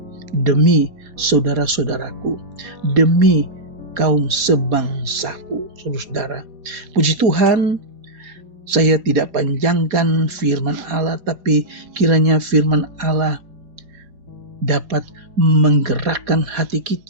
demi saudara-saudaraku, demi kaum sebangsaku. Saudara, puji Tuhan, saya tidak panjangkan firman Allah, tapi kiranya firman Allah dapat menggerakkan hati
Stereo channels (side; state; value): left; late; 5.0 ms